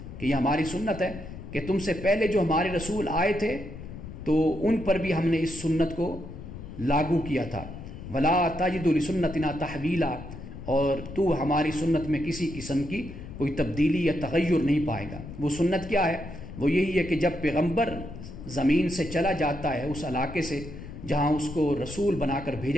کہ یہ ہماری سنت ہے کہ تم سے پہلے جو ہمارے رسول آئے تھے تو ان پر بھی ہم نے اس سنت کو لاگو کیا تھا۔ ولا تجد لسنتنا تحویلا، اور تو ہماری سنت میں کسی قسم کی کوئی تبدیلی یا تغیر نہیں پائے گا۔ وہ سنت کیا ہے؟ وہ یہی ہے کہ جب پیغمبر زمین سے چلا جاتا ہے، اس علاقے سے جہاں اس کو رسول بنا کر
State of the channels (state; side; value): noise; left; rumble, 12 dB below the sound